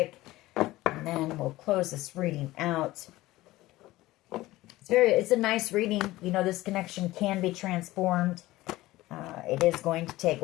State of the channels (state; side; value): quieter; right; 17.7 dB